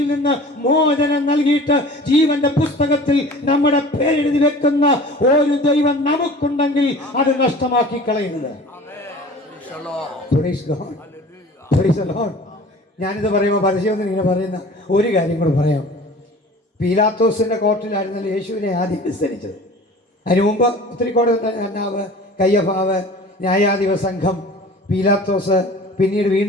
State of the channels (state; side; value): normal; both; correlation 0.42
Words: നിന്ന് മോചനം നൽകിയിട്ട് ജീവന്റെ പുസ്തകത്തിൽ നമ്മുടെ പേരെഴുതി വെക്കുന്ന ഒരു ദൈവം നമുക്കുണ്ടെങ്കിൽ അത് നഷ്ടമാക്കി കളയുന്നത്. ഞാനിത് പറയുമ്പോൾ പരസ്യമൊന്നും ഇങ്ങനെ പറയുന്ന ഒരു കാര്യം കൂടെ പറയാം. പീലാത്തോസിന്റെ കോർട്ടിലായിരുന്നല്ലോ യേശുവിനെ ആദ്യം വിസ്തരിച്ചത്. അതിനു മുമ്പ് ഒത്തിരി കോടതി, കയ്യഫാവ്, ന്യായാധിപ സംഘം, പീലാത്തോസ്, പിന്നീട്